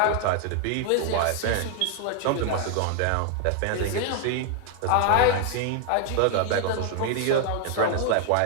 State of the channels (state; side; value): different; both; correlation 0.00